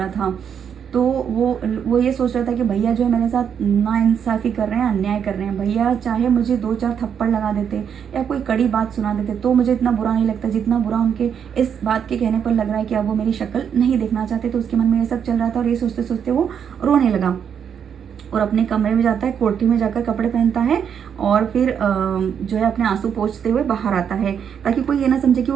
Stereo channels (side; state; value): left; quieter; 7.9 dB